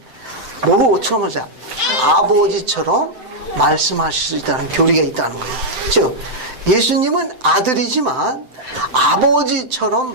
뭐처럼 하세요? 아버지처럼 말씀하실 수 있다는 교리가 있다는 거예요. 즉 예수님은 아들이지만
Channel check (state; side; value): late; left; 7.8 ms